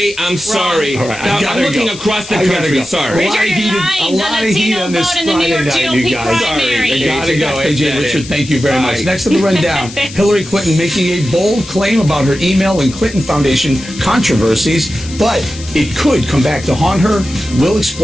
I'm sorry. All right, I Now, gotta I'm looking go. across the I gotta country. go. Sorry. A lot of Richard, heat, you're a lying. lot The of heat Latino on this vote in the New Friday York night, GOP you guys. primary. I gotta AJ, go. got AJ that Richard, in. thank you very much. Bye. Next on the rundown, Hillary Clinton making a bold claim about her email and Clinton Foundation controversies, but it could come back to haunt her. We'll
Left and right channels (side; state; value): left; noise; hiss, 15 dB below the sound